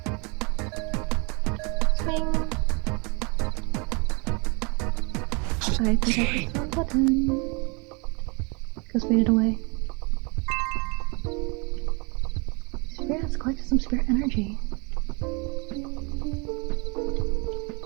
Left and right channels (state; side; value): quieter; left; 31.1 dB